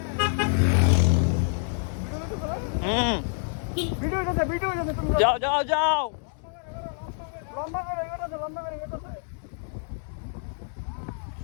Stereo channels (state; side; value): silent; right; digital silence